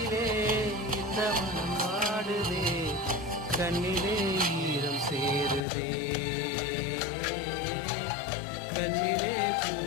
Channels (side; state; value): right; drops out; at 5.6 s